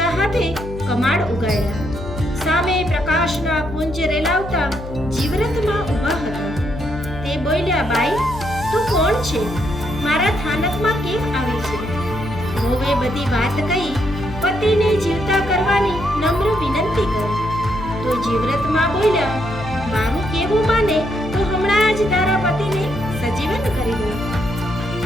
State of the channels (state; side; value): noise; left; hum, 10 dB below the sound